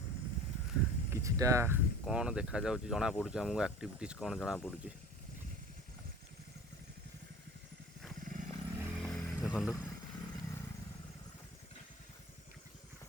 किछिटा कौन देखा जाऊँ जना पड़ुଛି आमको एक्टिविटीज कौन जना पड़ुଛି देखु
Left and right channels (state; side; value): normal; both; correlation 0.40